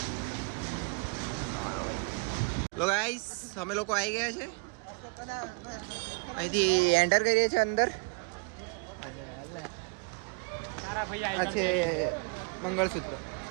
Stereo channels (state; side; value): quieter; left; 30.2 dB